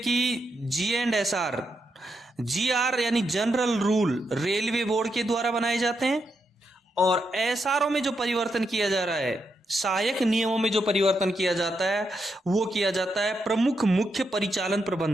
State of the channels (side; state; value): both; normal; correlation 0.82